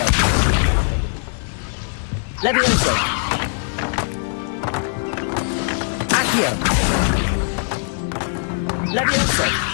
Levioso! Accio! Levioso!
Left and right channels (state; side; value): silent; right; digital silence